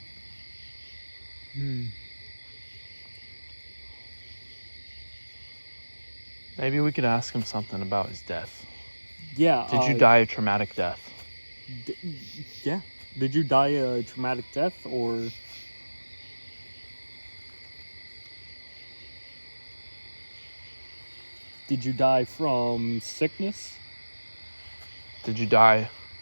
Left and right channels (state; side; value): inverted; both; correlation -1.00